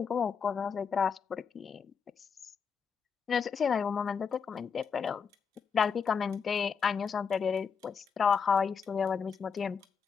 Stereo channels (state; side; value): quieter; right; 6.3 dB